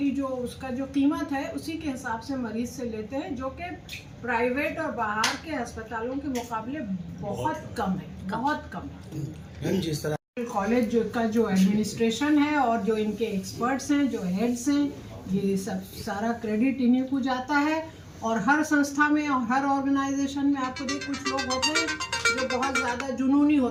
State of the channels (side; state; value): both; identical; correlation 1.00